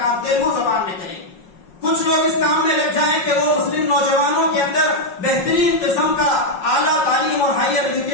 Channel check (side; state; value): right; late; 5.5 ms